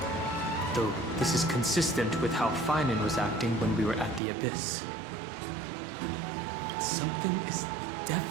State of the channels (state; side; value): drops out; left; at 4.2 s